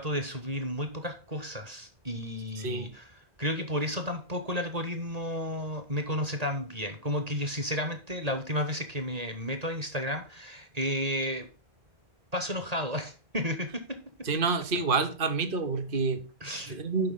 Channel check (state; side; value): late; left; 1.8 ms